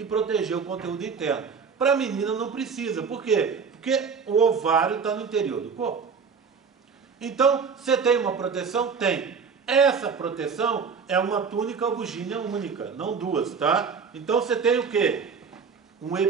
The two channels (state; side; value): quieter; left; 5.8 dB